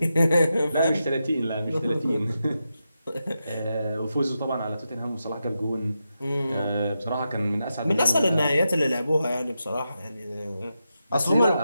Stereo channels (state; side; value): inverted; both; correlation -0.88